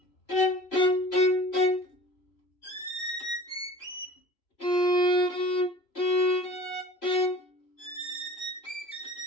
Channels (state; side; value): late; right; 3.0 ms